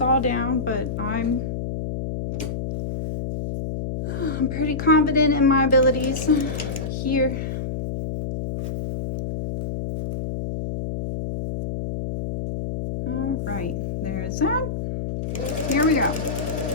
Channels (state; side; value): noise; left; hum, 4 dB below the sound